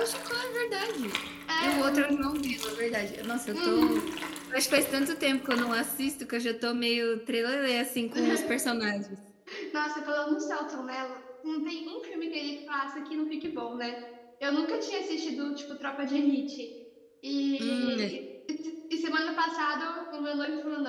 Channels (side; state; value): both; identical; correlation 1.00